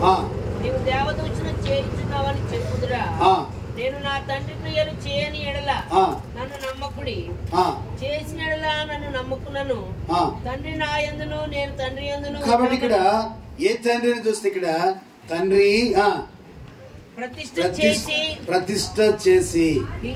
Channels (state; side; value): identical; both; correlation 1.00